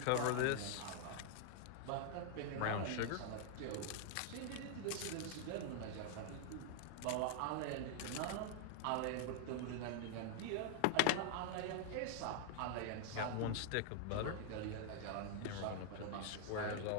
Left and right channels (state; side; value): different; both; correlation 0.00